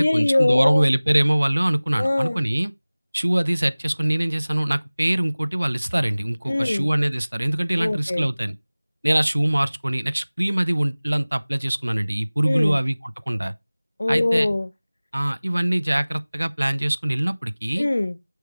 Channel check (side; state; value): both; inverted; correlation -0.99